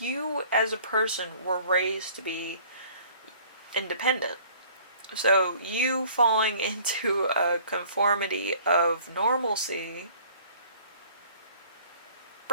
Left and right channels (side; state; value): both; inverted; correlation -0.52